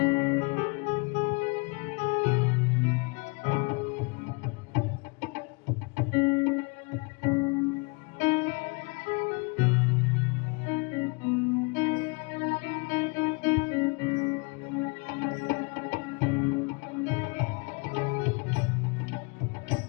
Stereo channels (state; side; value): quieter; right; 31.0 dB